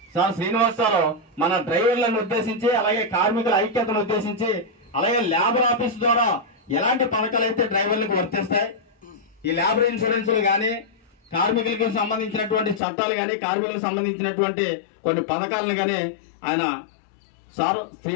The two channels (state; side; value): drops out; right; at 12.8 s